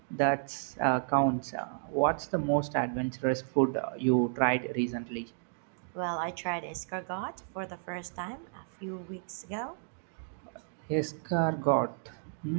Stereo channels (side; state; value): left; silent; digital silence